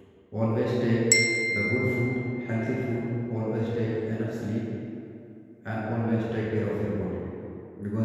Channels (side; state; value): both; identical; correlation 1.00